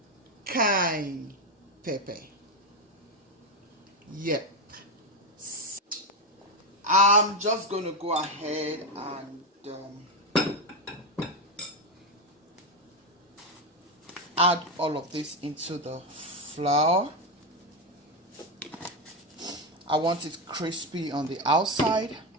cayenne pepper. Yep. I'm just going to go ahead and add all of this into the flour. I want it crispy on the outside,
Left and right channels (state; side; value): normal; both; correlation 0.10